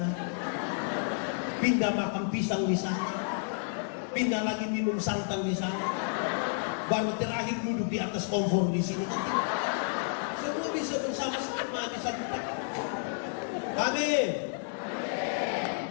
pindah makan pisang di sana, pindah lagi minum santan di sana, baru terakhir duduk di atas kompor di sini. Kan tidak. Semua bisa bersama-sama di satu tempat. Amin.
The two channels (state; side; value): silent; right; digital silence